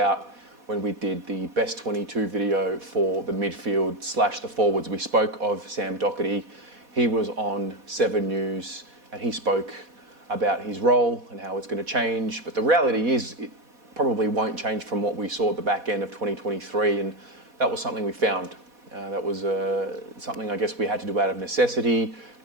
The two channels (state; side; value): late; left; 4.1 ms